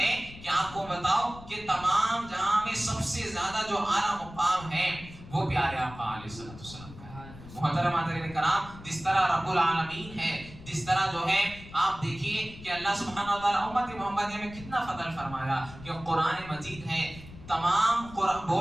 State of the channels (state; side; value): noise; left; rumble, 16 dB below the sound